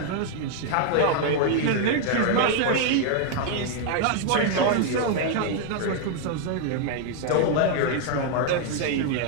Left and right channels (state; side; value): different; both; correlation 0.00